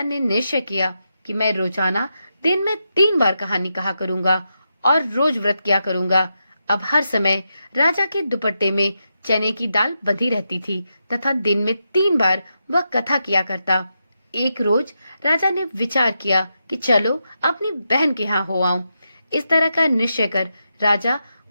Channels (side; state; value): both; inverted; correlation -0.86